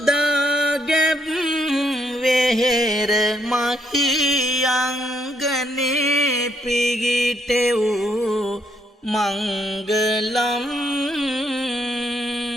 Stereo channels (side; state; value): both; normal; correlation 0.74